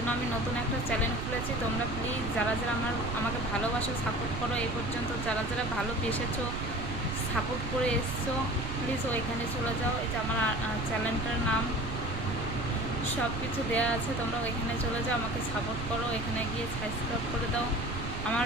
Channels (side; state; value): right; noise; rumble, 5 dB below the sound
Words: আমি নতুন একটা চ্যানেল খুলেছি। তোমরা প্লিজ যারা যারা আমাকে ভালোবাসো, সাপোর্ট করো, এই পর্যন্ত যারা যারা ভালোবেসেছো, সাপোর্ট করে এসছো, প্লিজ ওইখানে চলে যাও। এই যে আমার চ্যানেলটার নাম সব কিছু দেওয়া আছে, তোমরা ওইখানে চলে যাও, আমাকে সাপোর্ট করো। এখানে গিয়ে সাবস্ক্রাইব করে দাও। আমার